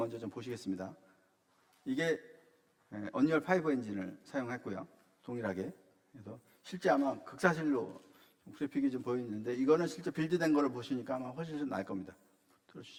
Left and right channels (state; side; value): identical; both; correlation 1.00